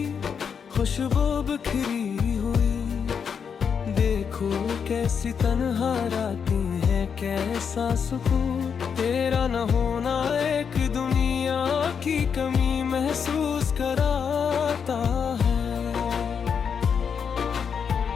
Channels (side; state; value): right; quieter; 6.8 dB